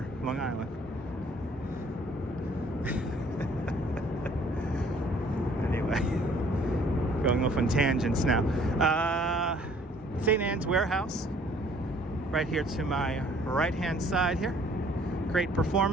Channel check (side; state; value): both; normal; correlation 0.58